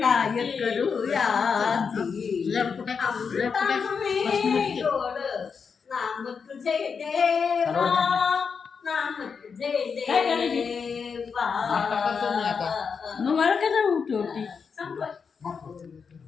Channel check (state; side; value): quieter; right; 5.9 dB